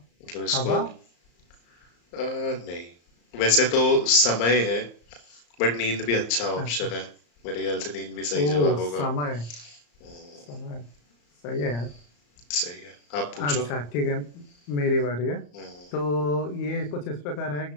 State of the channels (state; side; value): late; right; 34 ms